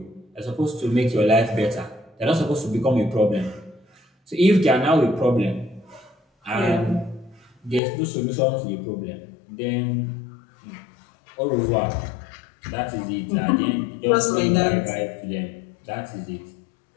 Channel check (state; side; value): drops out; right; at 7.8 s